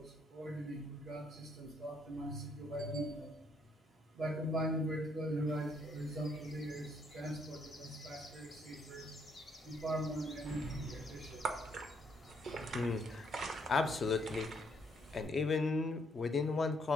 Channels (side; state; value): both; normal; correlation 0.71